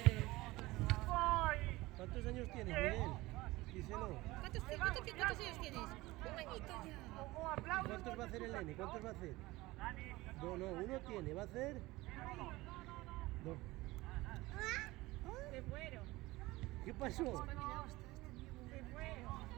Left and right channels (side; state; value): left; quieter; 19.8 dB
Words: Miguel? ¿Cuántos años tienes, Miguel? Díselo. ¿Cuántos años tienes? Un añito ya. ¿Cuántos va a hacer el nene? ¿Cuántos va a hacer? No, uno tiene. ¿Va a hacer? Dos. Se fueron. ¿Qué pasó? Espabilado está este niño. Se fueron.